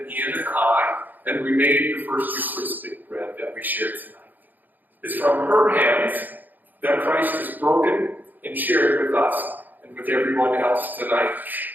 Ian and I, and we made the first Eucharistic bread that we shared tonight. It's from her hands that Christ has broken and shared with us and with everyone else tonight.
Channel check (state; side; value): late; left; 0.085 ms